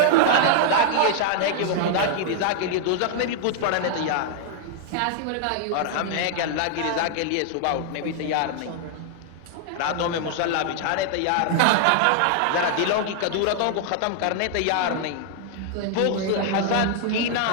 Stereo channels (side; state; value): both; different; correlation 0.00